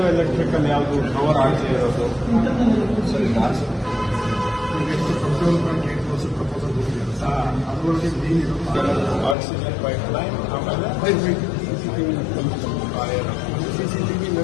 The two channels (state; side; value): drops out; right; at 9.3 s